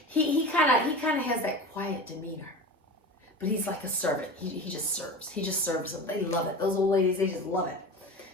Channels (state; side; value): normal; both; correlation 0.31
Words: he kind of has that quiet demeanor, but he's like a servant. He just serves. He just serves them. They love it. Those old ladies, they just love it.